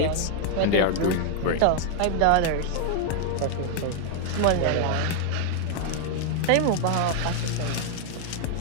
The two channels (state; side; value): different; both; correlation 0.00